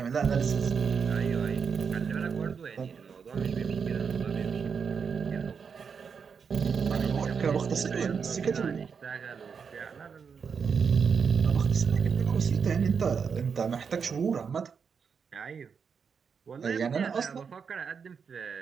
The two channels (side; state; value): left; quieter; 6.2 dB